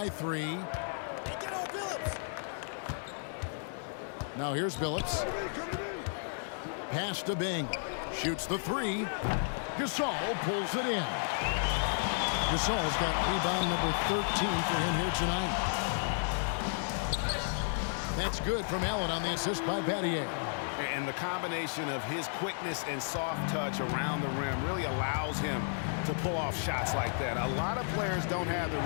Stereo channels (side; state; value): right; silent; digital silence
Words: 3. Now here's Billups. Pass to Bing. Shoots the 3. Gasol pulls it in. Gasol's got rebound number 13 for him here tonight. That's good from Allen on the assist by Battier. And the combination of his quickness and soft touch around the rim really allows him to pull off shots like that. A lot of players don't have the